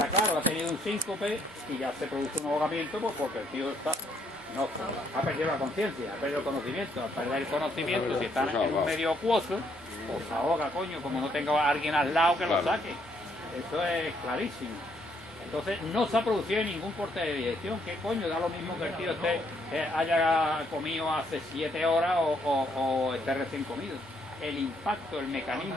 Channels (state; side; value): normal; both; correlation 0.70